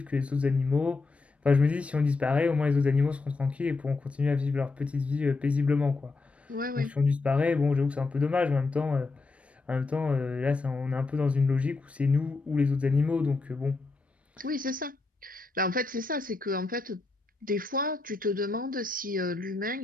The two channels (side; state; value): right; quieter; 3.7 dB